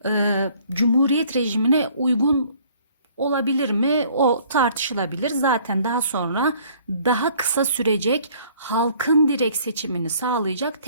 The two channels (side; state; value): both; inverted; correlation -0.58